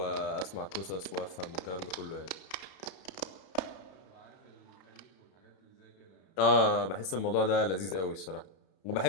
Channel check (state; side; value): late; right; 32 ms